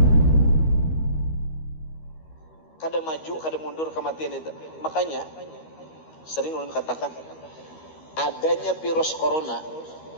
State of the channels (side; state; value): right; late; 13 ms